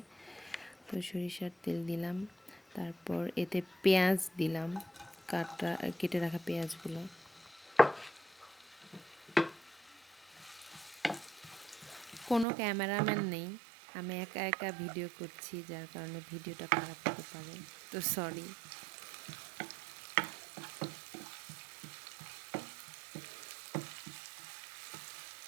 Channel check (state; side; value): drops out; left; at 12.5 s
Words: তো সরিষার তেল দিলাম, তারপর এতে পেঁয়াজ দিলাম, কেটে রাখা পেঁয়াজগুলো। কোনো ক্যামেরাম্যান নেই, আমি একা একা ভিডিও করছি, যার কারণে ভিডিওটা খারাপ হতে পারে, তো সরি।